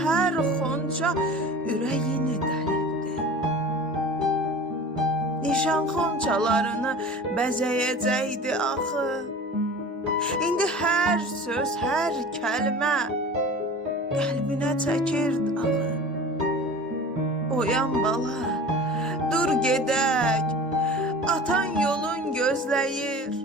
hər xonca ürəyini dəlibdi. Nişan xonçalarını bəzəyəcəkdi axı. İndi hər söz, hər kəlmə qəlbinə çəkirdi ağı. Oyan bala, dur gedək, atan yolun gözləyir.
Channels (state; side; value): normal; both; correlation 0.39